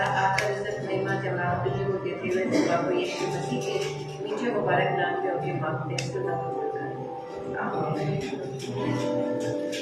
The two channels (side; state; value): both; identical; correlation 1.00